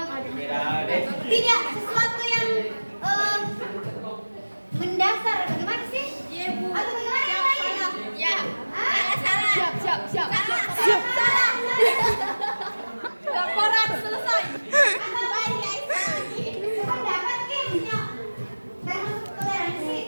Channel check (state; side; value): inverted; both; correlation -1.00